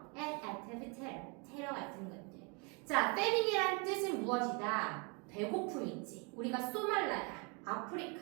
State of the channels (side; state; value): left; quieter; 32.7 dB